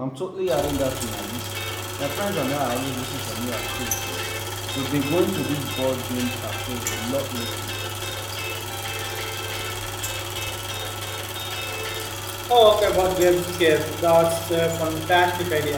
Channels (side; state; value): both; identical; correlation 1.00